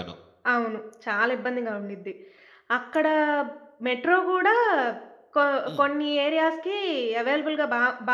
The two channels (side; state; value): both; identical; correlation 1.00